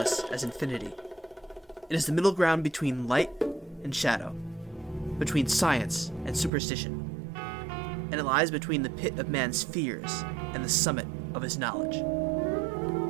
as infinity. It is the middle ground between light and shadow, between science and superstition, and it lies between the pit of man's fears and the summit of his knowledge.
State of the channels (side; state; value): left; drops out; at 6.5 s